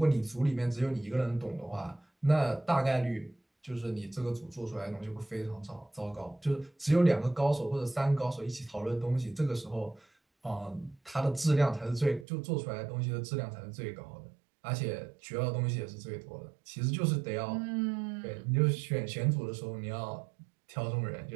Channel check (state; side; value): drops out; left; at 12.2 s